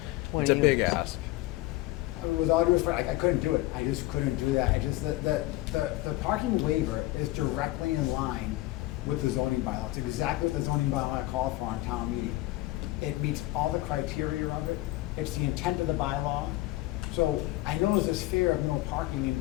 20 it's a big units. ask. With all due respect, I couldn't do it. I just couldn't do that. The parking waiver is directly in line with the zoning bylaw. It's exactly what the zoning bylaw called for on town meeting. It meets all the criteria of it. It's the intent of the bylaw. So I know there's this fear of no parking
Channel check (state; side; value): quieter; right; 18.1 dB